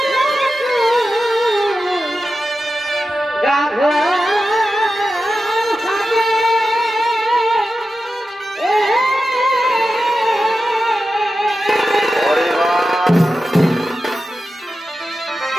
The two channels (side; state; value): both; normal; correlation 0.92